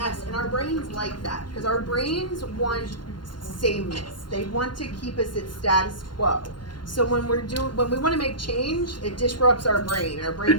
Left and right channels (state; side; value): late; right; 0.71 ms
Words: and our brains like that, because our brains want sameness. They want to keep us at status quo. So when we want to make change, it disrupts our brain. Our brain